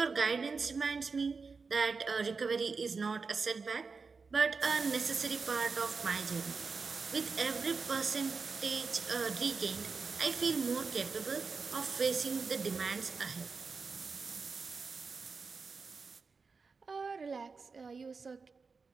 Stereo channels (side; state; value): left; quieter; 4.7 dB